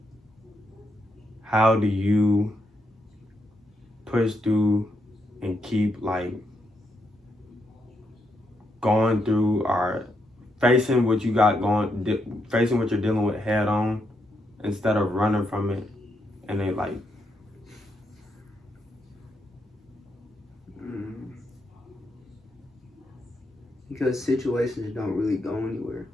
how do you push through and keep, like, going through or facing what you got going, facing what you're dealing with head on instead of running from it and then, like, because situations don't really go anywhere,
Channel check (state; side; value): normal; both; correlation 0.80